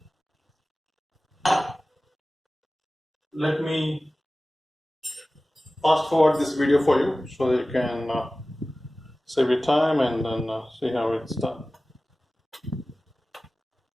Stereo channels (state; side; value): normal; both; correlation 0.97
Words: Let me fast forward this video for you so that you can save your time and then see how it's done.